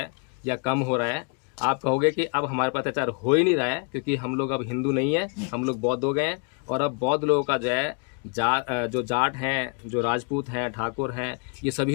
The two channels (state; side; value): quieter; right; 35.4 dB